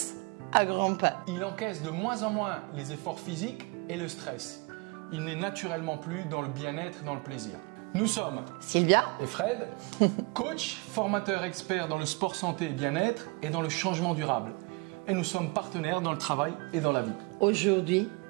à grands pas. Il encaisse de moins en moins les efforts physiques et le stress. Il n'est naturellement plus dans le bien-être et dans le plaisir. Nous sommes Sylvia et Fred, coach, formateur expert dans le sport santé et bien-être et dans le changement durable. Et nous sommes partenaires dans le travail et dans la vie. Aujourd'hui,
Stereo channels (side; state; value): left; quieter; 27.8 dB